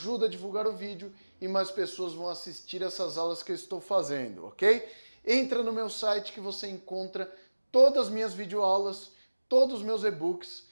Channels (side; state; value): both; inverted; correlation -1.00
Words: a divulgar o vídeo e mais pessoas vão assistir essas aulas que eu estou fazendo, ok? Entra no meu site que você encontra todas as minhas videoaulas, todos os meus e-books,